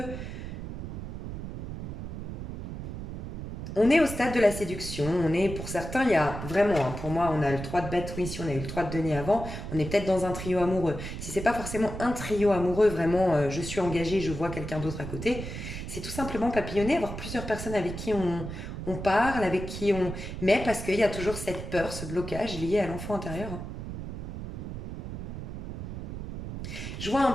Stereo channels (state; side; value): noise; right; rumble, 7 dB below the sound